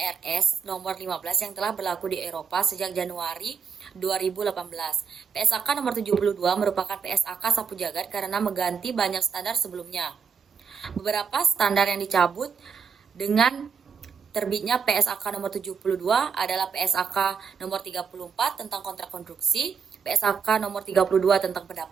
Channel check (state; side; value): quieter; left; 6.2 dB